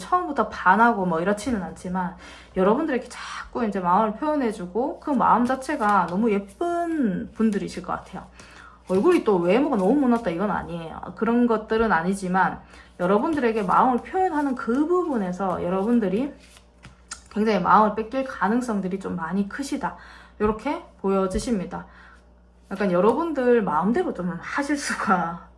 처음부터 반하고 뭐 이렇지는 않지만 여러분들에게 자꾸 이제 마음을 표현해주고 그 마음 자체가 너무 예쁜 분들이실 것 같아요. 얼굴이 또 외모가 너무 못났다 이건 아니에요. 그런 것들은 아니지만 여러분들에게 마음을 표현하는 그 부분에서 여러분들이 굉장히 마음을 뺏길 가능성들이 좀 많이 크시다. 이렇게 보여지십니다. 약간 여러분들 마음대로 좀 하실 수가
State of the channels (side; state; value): both; identical; correlation 1.00